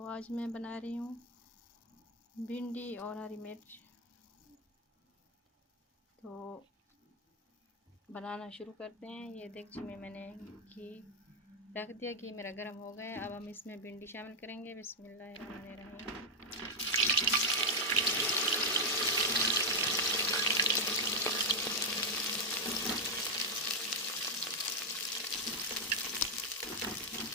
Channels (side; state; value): both; normal; correlation 0.01